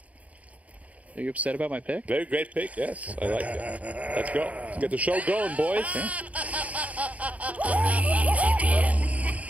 Are you upset about my pick? Very great pick, yes. I like it. Let's go. Let's get the show going, boys.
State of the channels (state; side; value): late; left; 0.069 ms